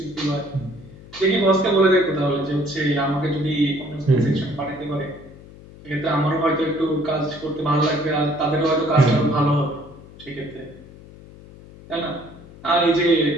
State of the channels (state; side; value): noise; left; hum, 20 dB below the sound